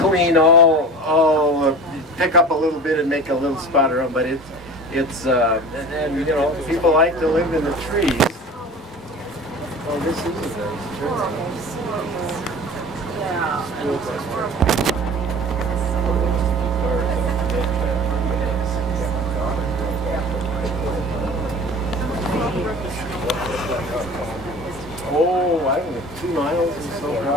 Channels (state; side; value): normal; both; correlation 0.38